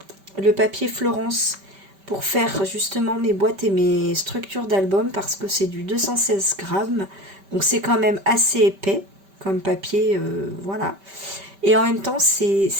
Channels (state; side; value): late; left; 5.1 ms